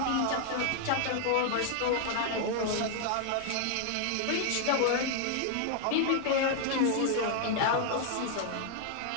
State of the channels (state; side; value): different; both; correlation 0.00